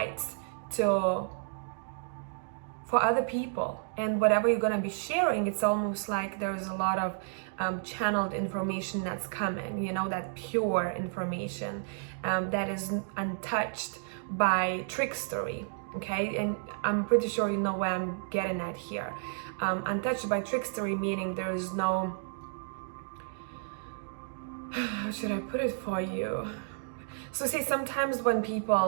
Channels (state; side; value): silent; left; digital silence